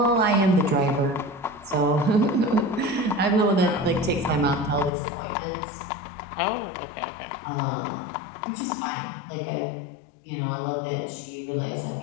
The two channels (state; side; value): drops out; right; at 4.9 s